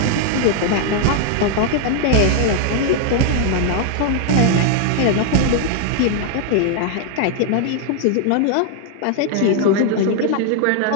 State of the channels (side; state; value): both; different; correlation 0.00